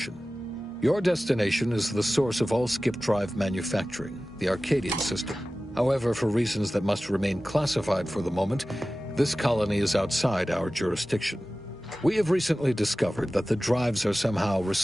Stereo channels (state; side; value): normal; both; correlation 0.96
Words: Your destination is the source of all skip drive manufacturing, the Arcadian system. However, for reasons that must remain classified for the moment, this colony is outside our jurisdiction. We have recently discovered that the drives are somehow